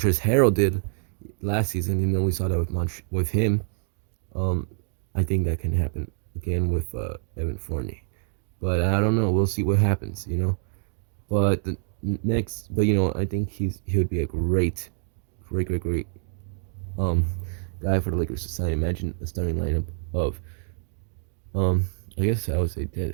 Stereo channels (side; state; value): left; silent; 61 dB below the other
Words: Harrell did last season. We saw that with him. I think that can happen again with Evan Fournier. But I don't know. We'll see what happens, But I think he would be a great guy for the Lakers to sign. Imagine a starting lineup of I guess I would say